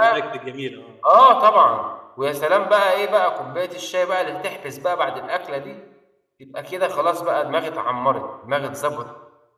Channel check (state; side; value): identical; both; correlation 1.00